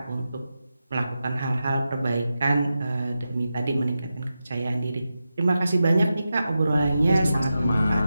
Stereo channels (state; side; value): inverted; both; correlation -0.91